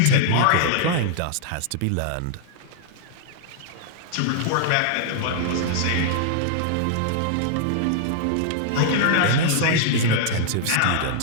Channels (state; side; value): different; both; correlation -0.01